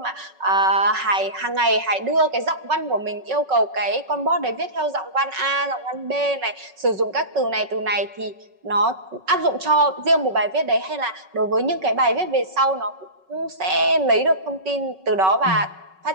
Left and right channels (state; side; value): late; left; 5.3 ms